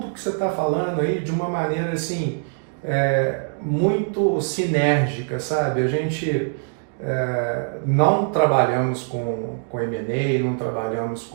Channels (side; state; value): left; silent; digital silence